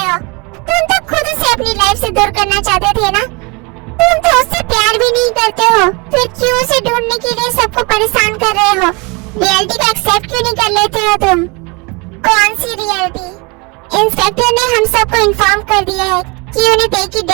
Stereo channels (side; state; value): left; quieter; 28.7 dB